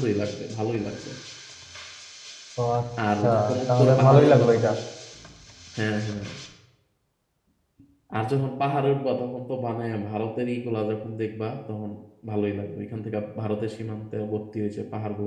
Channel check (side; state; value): both; identical; correlation 1.00